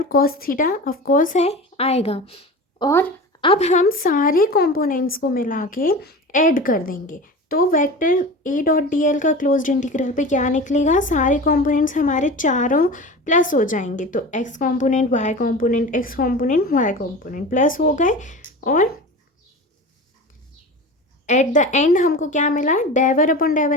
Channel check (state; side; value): normal; both; correlation 0.32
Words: cos theta of course है आएगा, और अब हम सारे कंपोनेंट्स को मिला के ऐड कर देंगे, तो vector a dot D L का क्लोज्ड इंटीग्रल पे क्या निकलेगा, सारे कंपोनेंट्स हमारे चारों प्लस हो जाएंगे, तो x component y component x component y component plus हो गए, और एट द एंड हमको क्या मिला, डेवर upon